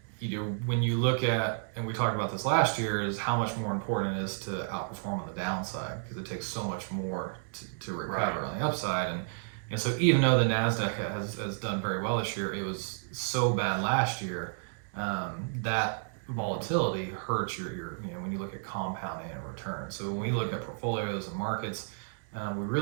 when you look at, and we talked about this last year, is how much more important it is to outperform on the downside, because it takes so much more to recover on the upside. And so even though the NASDAQ has done very well this year, it was so bad last year that volatility hurts your when you look at compounding and return. So when we look at portfolios and markets, we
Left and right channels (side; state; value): left; silent; digital silence